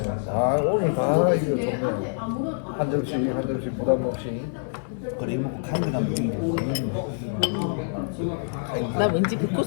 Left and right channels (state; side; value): silent; right; 61 dB below the other